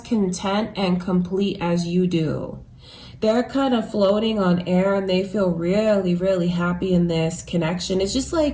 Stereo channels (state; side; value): identical; both; correlation 1.00